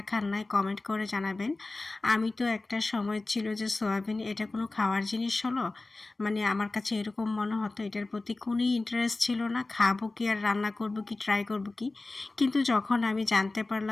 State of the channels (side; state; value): right; quieter; 3.2 dB